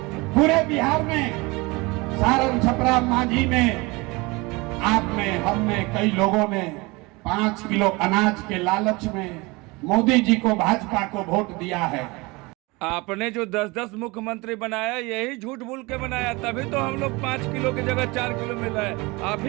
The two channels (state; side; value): quieter; left; 24.6 dB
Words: पूरे बिहार में, सारण, छपरा, मांझी में आपने, हमने, कई लोगों ने 5 किलो अनाज के लालच में मोदी जी को, भाजपा को वोट दिया है। आपने जो 10-10 मुख्यमंत्री बनाया, यही झूठ बोल के बनाया, तभी तो हम लोग 5 किलो की जगह 4 किलो मिल रहा है। आप